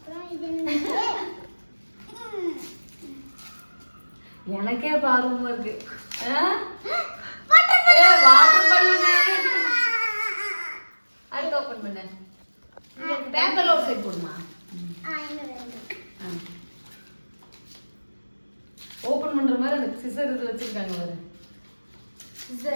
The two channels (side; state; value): both; inverted; correlation -1.00